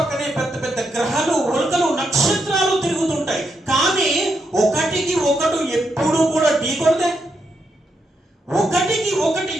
పెద్ద పెద్ద గ్రహాలు, ఉల్కలు, నక్షత్రాలు తిరుగుతుంటాయి. కానీ ఒకటికి ఒకటి ఎప్పుడు కూడా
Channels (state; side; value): normal; both; correlation 0.81